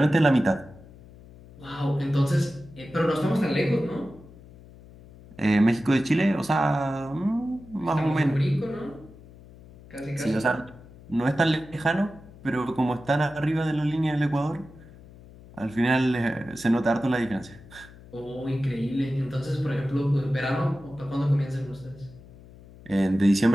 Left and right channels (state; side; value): noise; left; hum, 21 dB below the sound